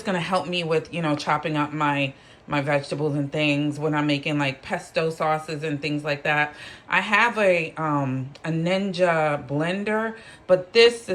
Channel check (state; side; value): identical; both; correlation 1.00